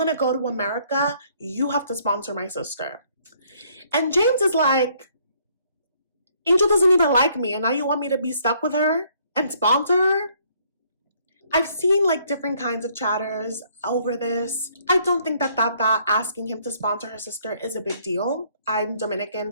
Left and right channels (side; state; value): both; inverted; correlation -0.65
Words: to go to America, you have to sponsor my sister. And James is like, Angel doesn't even like me, and now you want me to be stuck with her and sponsor her? I've seen like different kinds of chatters over this. I don't think that Tata asking him to sponsor her sister is a big deal. I'm